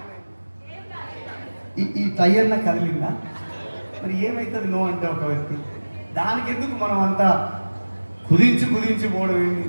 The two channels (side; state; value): both; inverted; correlation -1.00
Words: ఈ టైర్న కదిలిందా? మరి ఏమవుతుంది నో అంటే ఒక వ్యక్తి? దానికి ఎందుకు మనం అంతా కుదించి పోవడం ఏంటి?